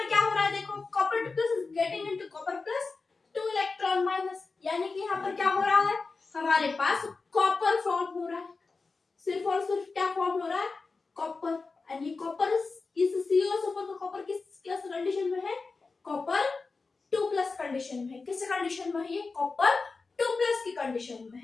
क्या हो रहा है? देखो copper plus is getting into copper plus 2 electron minus, यानी कि यहाँ पर क्या हो रहा है? हमारे पास कॉपर फॉर्म हो रहा है। सिर्फ और सिर्फ क्या फॉर्म हो रहा है? कॉपर। एंड ये कॉपर इस COSO4 का कॉपर किस कंडीशन में है? कॉपर 2+ कंडीशन में है। किस कंडीशन में है ये? कॉपर 2+ की कंडीशन में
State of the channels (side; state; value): right; quieter; 4.1 dB